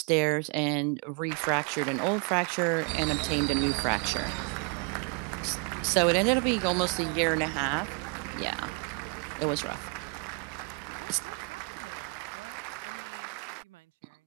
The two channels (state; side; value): quieter; left; 36.8 dB